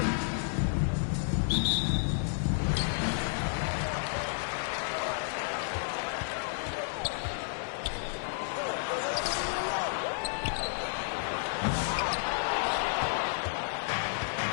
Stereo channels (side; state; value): right; silent; digital silence